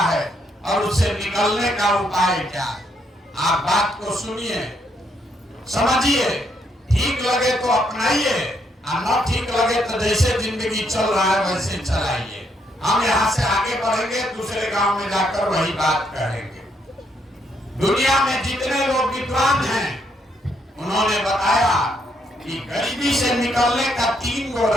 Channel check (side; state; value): both; normal; correlation 0.74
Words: और उससे निकलने का उपाय क्या है। आप बात को सुनिए, समझिए, ठीक लगे तो अपनाइए, न ठीक लगे तो जैसे जिंदगी चल रहा है वैसे चलाइए। हम यहाँ से आगे बढ़ेंगे, दूसरे गांव में जाकर वही बात करेंगे। दुनिया में जितने लोग विद्वान हैं उन्होंने बताया कि गरीबी से निकलने का 3 गो